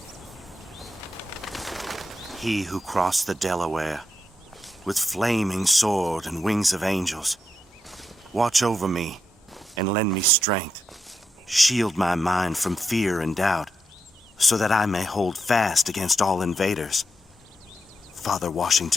He who crossed the Delaware, with flaming sword and wings of angels, watch over me and lend me strength. Shield my mind from fear and doubt, so that I may hold fast against all invaders. Father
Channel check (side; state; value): both; normal; correlation 0.84